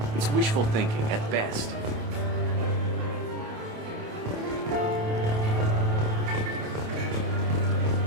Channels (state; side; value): late; left; 28 ms